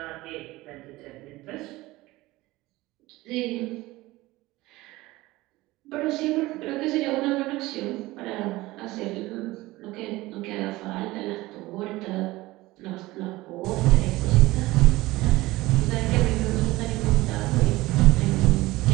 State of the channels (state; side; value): quieter; left; 19.2 dB